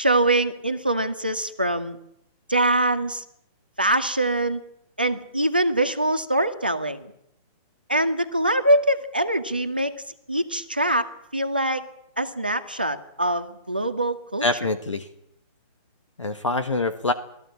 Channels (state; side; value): inverted; both; correlation -0.54